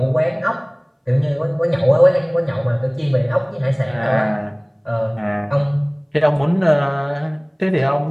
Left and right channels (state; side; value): identical; both; correlation 1.00